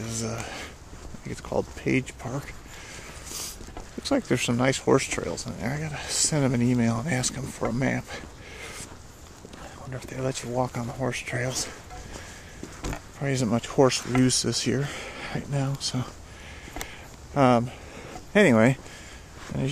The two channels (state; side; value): identical; both; correlation 1.00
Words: I think it's called Page Park. Looks like there's some nice horse trails in there. I gotta send them an email and ask them for a map. I wonder if they let you walk on the horse trails. Probably isn't much horse use this year, right now. So, anyway,